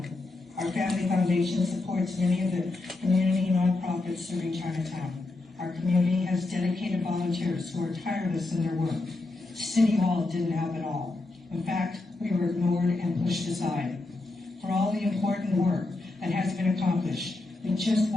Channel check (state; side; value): quieter; right; 3.1 dB